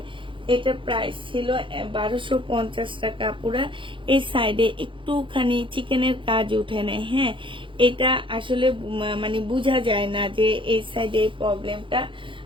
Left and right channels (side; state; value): left; late; 0.25 ms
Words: এটা প্রাইস ছিল 1250 টাকা। পুরা এই সাইডে একটুখানি চিকেনের কাজ উঠে নেয়, হ্যাঁ। এটা আসলে মানে বোঝা যায় না যে এই সাইডে এই প্রবলেমটা।